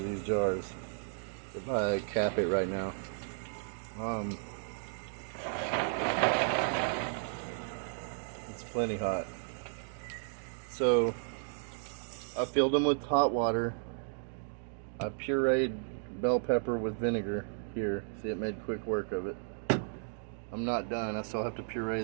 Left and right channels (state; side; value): silent; left; digital silence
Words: these jars. If I cap it right now. It's plenty hot. So I filled them with hot water. I pureed bell pepper with vinegar here. See, it made quick work of it. I'm not done. I still have to puree